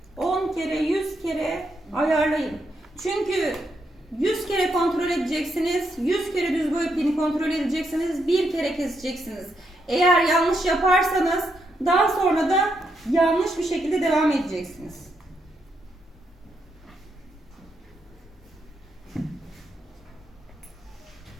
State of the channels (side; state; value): both; normal; correlation 0.80